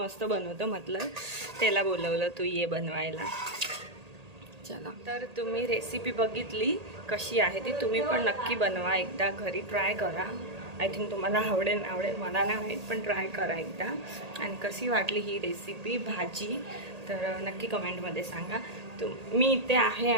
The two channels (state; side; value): late; left; 1.8 ms